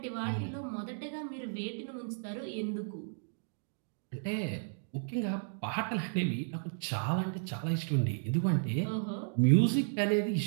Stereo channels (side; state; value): left; silent; digital silence